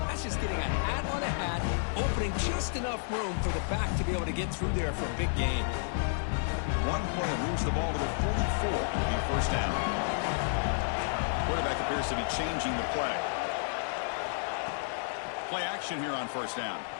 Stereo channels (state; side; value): silent; right; digital silence